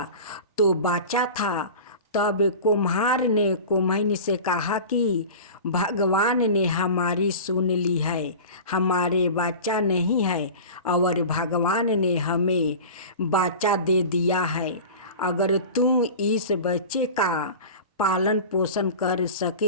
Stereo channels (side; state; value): both; inverted; correlation -0.35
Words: तो बच्चा था। तब कुम्हार ने कुम्हैन से कहा कि भगवान ने हमारी सुन ली है, हमारे बच्चा नहीं है और भगवान ने हमें बच्चा दे दिया है। अगर तू इस बच्चे का पालन पोषण कर